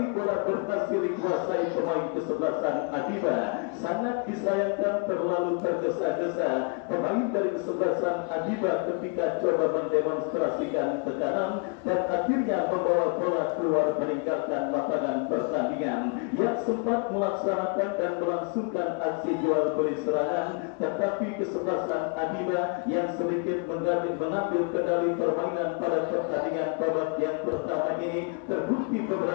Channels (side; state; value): right; quieter; 36.1 dB